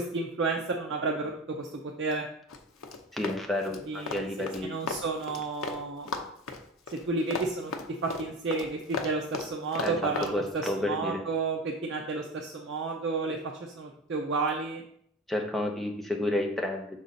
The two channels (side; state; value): both; normal; correlation 0.31